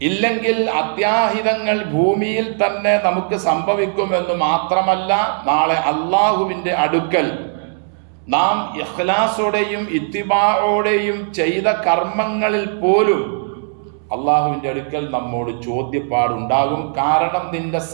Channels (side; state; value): left; silent; digital silence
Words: ഇല്ലെങ്കിൽ അത്യാഹിതങ്ങൾ ഭൂമിയിൽ തന്നെ നമുക്ക് സംഭവിക്കുമെന്ന് മാത്രമല്ല, നാളെ അള്ളാഹുവിന്റെ അടുക്കൽ നാം ഇഖ്ലാസോടെയും ഇത്തിബാഓടെയും ചെയ്ത കർമ്മങ്ങളിൽ പോലും അള്ളാഹുവിന്റെ അടുക്കൽ നമ്മോട് ചോദ്യപ്പാടുണ്ടാകും. കാരണം നിന്റെ